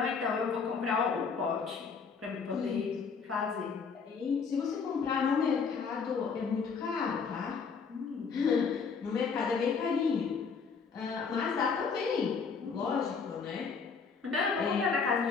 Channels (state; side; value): quieter; right; 5.6 dB